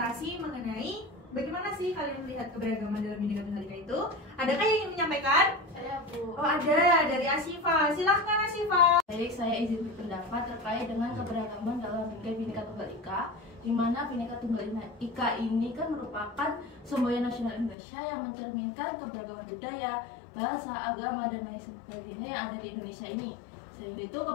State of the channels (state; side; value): drops out; right; at 17.8 s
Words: mengenai bagaimana sih kalian melihat keberagaman dalam Bhinneka Tunggal Ika itu. Adakah yang ingin menyampaikan? Saya Bu. Oh ada, dari Asifa. Silahkan Asifa. Baik, saya izin berpendapat terkait dengan keberagaman dalam Bhinneka Tunggal Ika, di mana Bhinneka Tunggal Ika ini kan merupakan semboyan nasional Indonesia yang mencerminkan keberagaman budaya, bahasa, agama, dan lain sebagainya yang ada di Indonesia ini. Sehingga itu